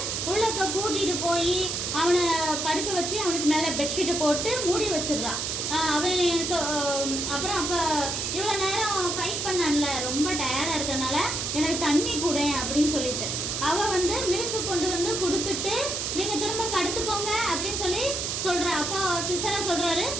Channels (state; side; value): noise; right; hiss, 2 dB below the sound